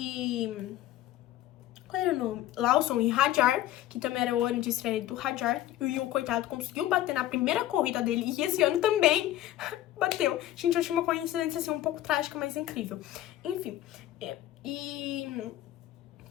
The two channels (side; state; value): right; quieter; 13.8 dB